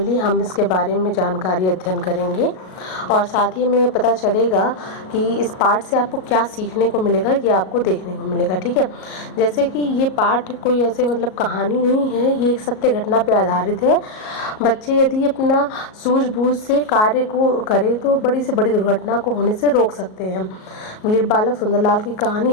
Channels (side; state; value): right; late; 38 ms